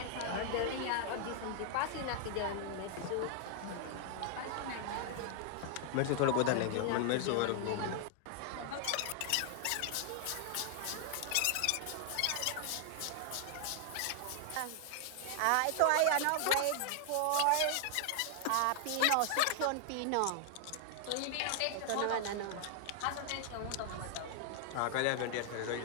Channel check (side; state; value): both; different; correlation 0.00